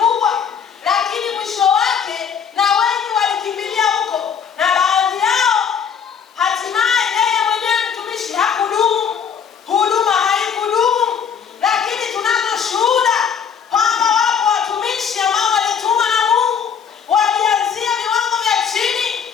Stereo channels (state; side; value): quieter; right; 7.2 dB